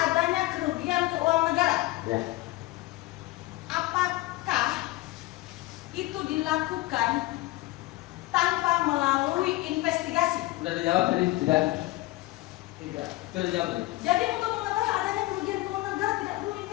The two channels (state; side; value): quieter; right; 19.0 dB